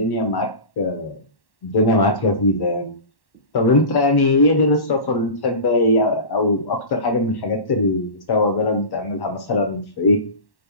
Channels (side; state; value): right; late; 1.1 ms